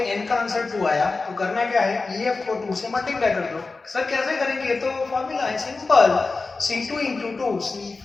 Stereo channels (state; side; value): quieter; right; 3.9 dB